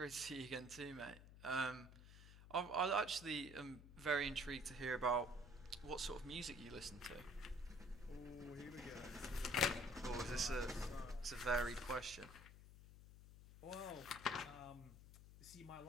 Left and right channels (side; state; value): left; noise; hum, 16 dB below the sound